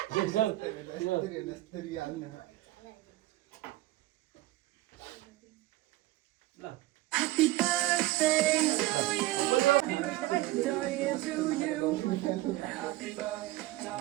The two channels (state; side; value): quieter; left; 17.2 dB